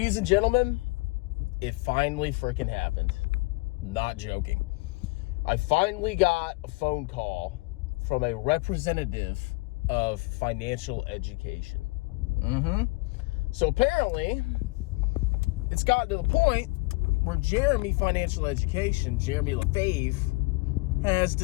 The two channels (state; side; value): quieter; right; 24.9 dB